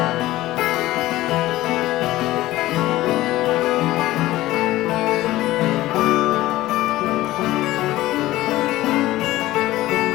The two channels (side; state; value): right; quieter; 16.5 dB